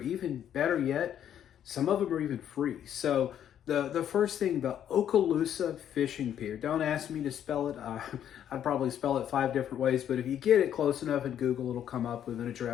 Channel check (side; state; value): right; quieter; 10.0 dB